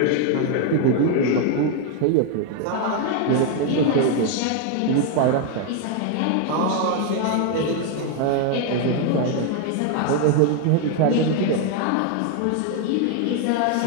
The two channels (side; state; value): both; different; correlation 0.01